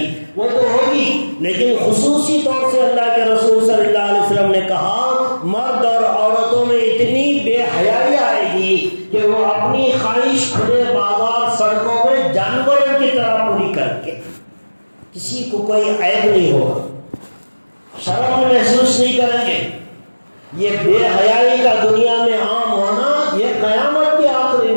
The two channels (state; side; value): inverted; both; correlation -1.00